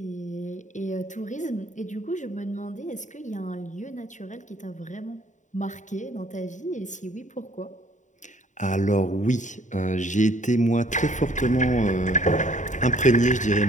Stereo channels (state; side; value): late; right; 0.36 ms